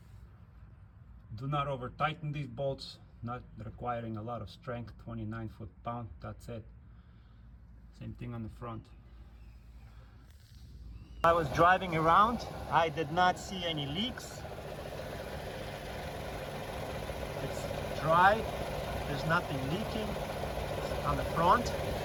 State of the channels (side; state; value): both; identical; correlation 1.00